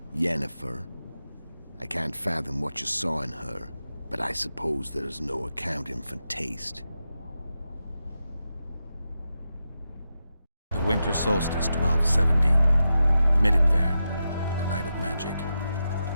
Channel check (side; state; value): both; inverted; correlation -0.89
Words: Yennefer. I can't fathom what you saw in her, but I suppose there's no accounting for taste. The winter solstice, 1270. Midinvern, the night of magic.